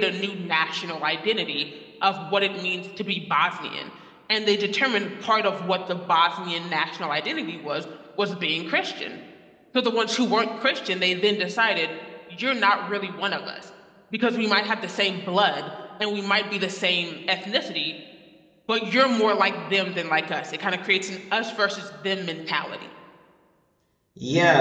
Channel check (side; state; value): both; identical; correlation 1.00